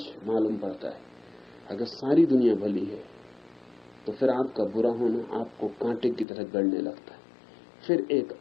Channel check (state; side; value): drops out; right; at 6.2 s